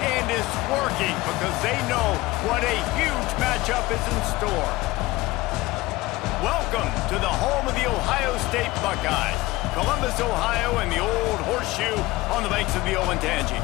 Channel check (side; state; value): right; quieter; 19.8 dB